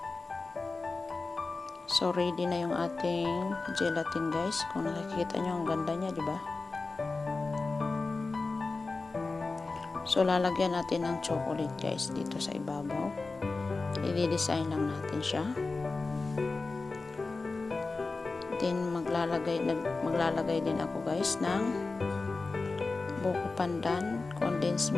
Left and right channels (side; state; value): right; quieter; 3.7 dB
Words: So, ready na yung ating gelatin, guys. Kung nakikita nyo, ang ganda niya, di ba? So, lalagyan natin ng chocolate, guys, dito sa ibabaw. I-design lang natin siya. Then, maglalagay din ako, guys, ng buko pandan, condensed